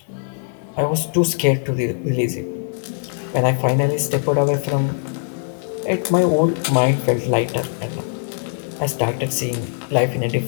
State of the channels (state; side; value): silent; right; 65 dB below the other